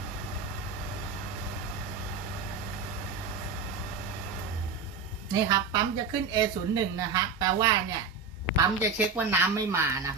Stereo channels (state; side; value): quieter; left; 4.9 dB